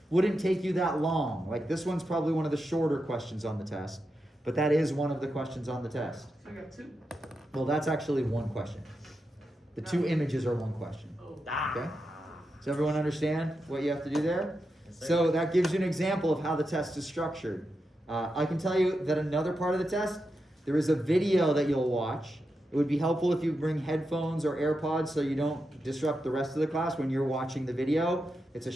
wouldn't take you that long. Like this one's probably one of the shorter questions on the test, but that is one of the questions on the test. So I got 2. Well, that's actually one question. The 2 images are one question. Oh. Okay? Does everyone understand what you have to do there? Yes, sir. So that gives you an example of how the test is structured. I can tell you that another part of the test, there is a video that you'll watch. It would be helpful if you bring headphones or AirPods so you don't disrupt the rest of the class when you're watching the video. It's a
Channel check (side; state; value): both; normal; correlation 0.87